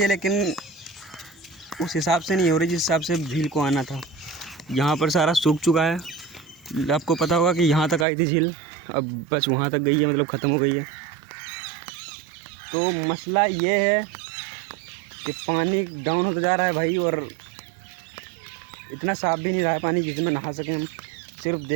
लेकिन उस हिसाब से नहीं हो रही जिस हिसाब से झील को आना था। यहाँ पर सारा सूख चुका है। आपको पता होगा कि यहाँ तक आई थी झील, अब बस वहाँ तक गई है, मतलब ख़त्म हो गई है। तो मसला ये है कि पानी डाउन होता जा रहा है भाई, और इतना साफ़ भी नहीं रहा है पानी जिसमें नहा सकें हम। सिर्फ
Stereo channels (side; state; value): left; drops out; at 8.1 s